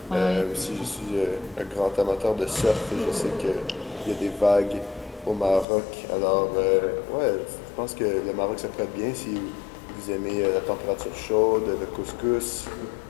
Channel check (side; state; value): right; drops out; at 5.7 s